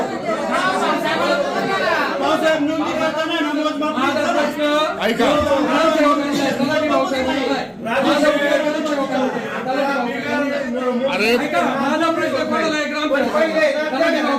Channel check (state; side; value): identical; both; correlation 1.00